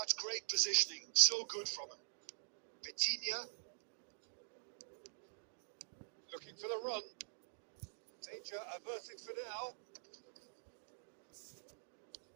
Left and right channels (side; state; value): left; silent; digital silence